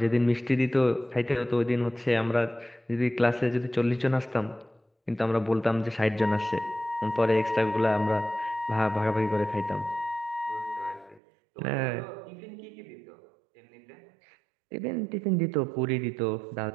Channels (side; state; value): left; drops out; at 11.2 s